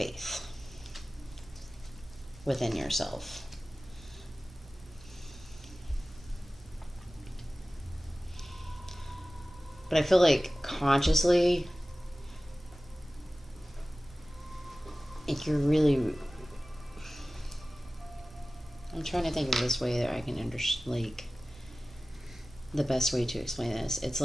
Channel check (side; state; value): both; normal; correlation 0.97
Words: within yourself. But I feel like consciously, if you're really, I'm trying to think of this way that I can understand, like, the best way to explain this. It's